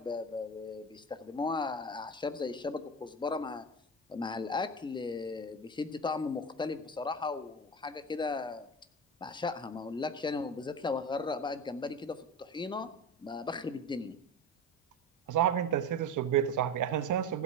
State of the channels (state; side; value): normal; both; correlation 0.26